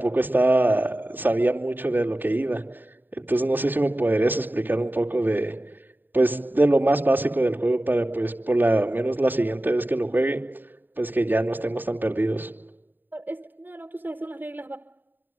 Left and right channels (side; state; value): left; late; 0.091 ms